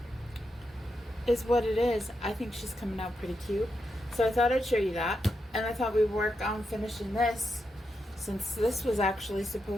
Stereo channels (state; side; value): normal; both; correlation 0.85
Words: is what it is. I think she's coming out pretty cute. So I thought I'd show you that. And I thought we'd work on finishing this, since this was actually